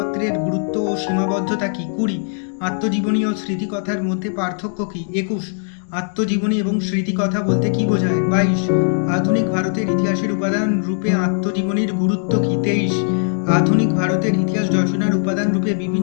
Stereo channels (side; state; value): right; silent; 60 dB below the other